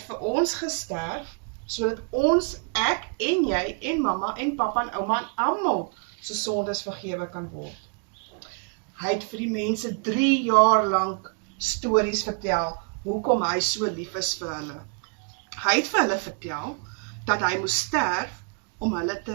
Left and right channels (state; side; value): quieter; left; 37.0 dB